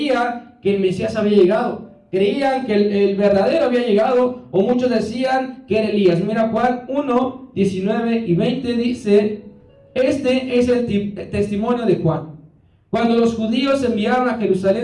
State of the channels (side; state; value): both; identical; correlation 1.00